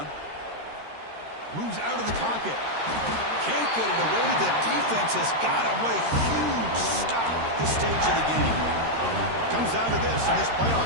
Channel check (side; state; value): left; late; 13 ms